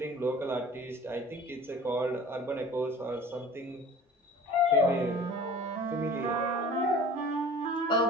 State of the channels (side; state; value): both; normal; correlation 0.43